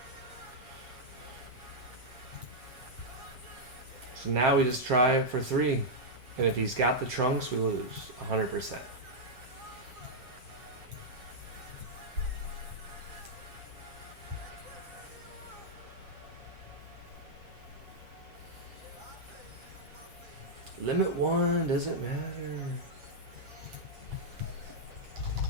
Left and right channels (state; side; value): late; left; 7.7 ms